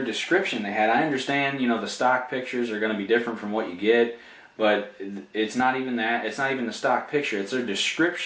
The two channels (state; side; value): identical; both; correlation 1.00